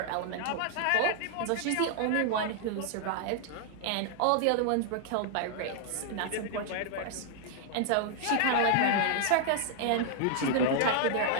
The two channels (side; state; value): both; different; correlation 0.00